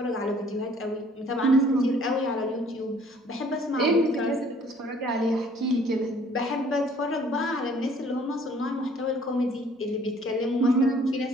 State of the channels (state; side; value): normal; both; correlation 0.57